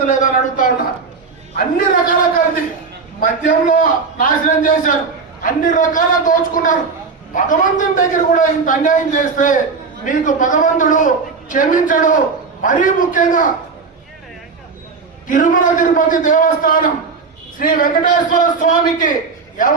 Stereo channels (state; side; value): quieter; left; 4.8 dB